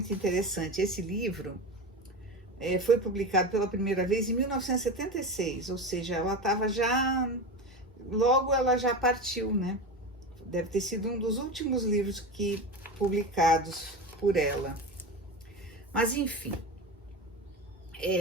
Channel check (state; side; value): normal; both; correlation 0.24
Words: interessante. Esse livro foi publicado pela primeira vez em 1976, ou seja, logo ela já partiu, né? Deve ter sido um dos últimos livros publicados por ela. Mas, enfim.